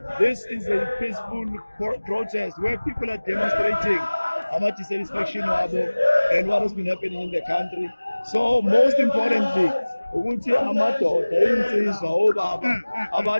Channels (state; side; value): inverted; both; correlation -1.00